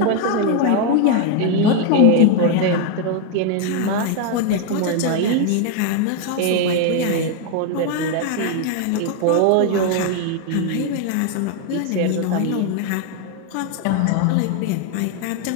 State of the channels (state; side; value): different; both; correlation 0.01